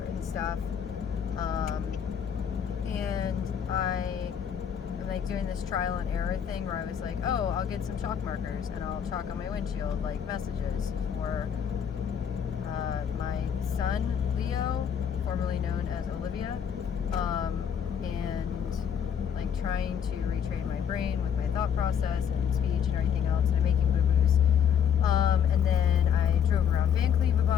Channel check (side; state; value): right; quieter; 8.2 dB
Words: and stuff. And I am like doing this trial and error thing where I was like, oh, I'll get some chalk markers and I'll chalk on my windshield like messages for my son, Leo, formerly known as Olivia, and like trying to retrain my brain with my thought process and speech and everything else, and I'm making boo-boos. And then I drove around Van Cleve a